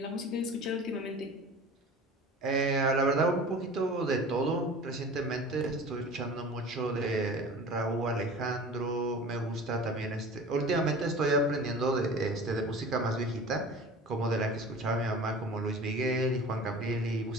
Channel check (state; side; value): normal; both; correlation 0.40